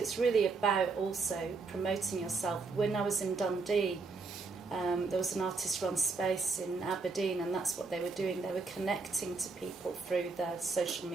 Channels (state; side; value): quieter; left; 4.1 dB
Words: really about also promoting yourself. When I was in Dundee, there was an artist-run space in Aberdeen, and that's what they were doing. They were connecting to people through their social